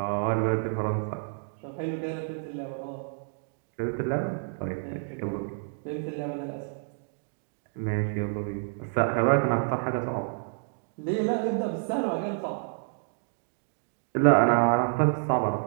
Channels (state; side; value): silent; left; digital silence